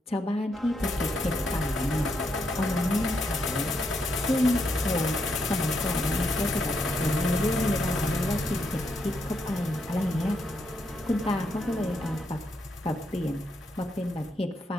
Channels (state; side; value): normal; both; correlation 0.79